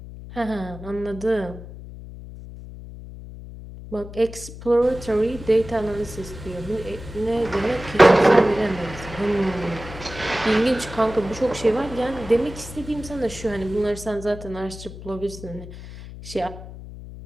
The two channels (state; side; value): noise; left; hum, 13 dB below the sound